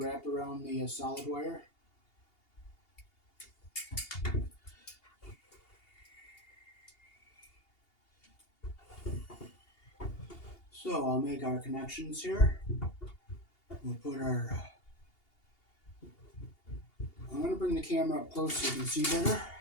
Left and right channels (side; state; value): right; late; 2.8 ms